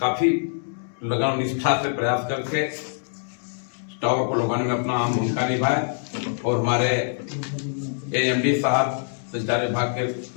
लगन और निष्ठा से प्रयास करके टावर को लगाने में अपना अहम भूमिका निभाए। और हमारे एएमडी साहब संचार विभाग के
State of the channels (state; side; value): silent; right; digital silence